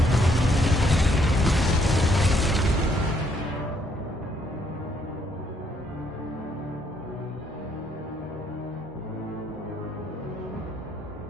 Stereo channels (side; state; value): both; normal; correlation 0.70